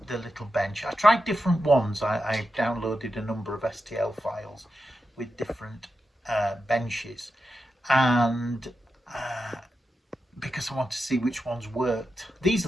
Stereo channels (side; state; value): both; normal; correlation 0.89